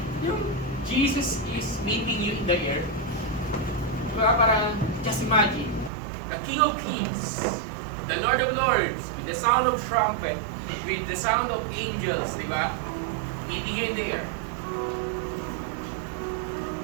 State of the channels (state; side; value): drops out; left; at 5.9 s